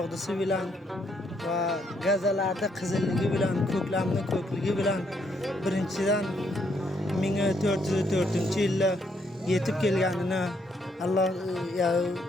bilan va gazalarda qizilligi bilan, ko'klamning ko'kligi bilan birinchidan 1404-yilda yetib kelganini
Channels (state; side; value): normal; both; correlation 0.73